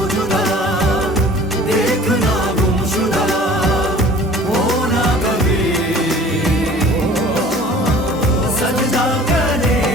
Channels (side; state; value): both; normal; correlation 0.47